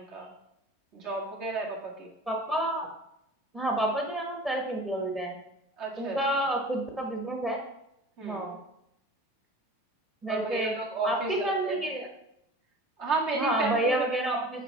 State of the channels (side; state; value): both; normal; correlation 0.41